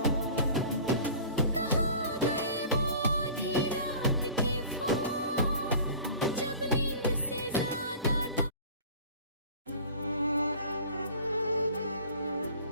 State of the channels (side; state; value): both; inverted; correlation -0.42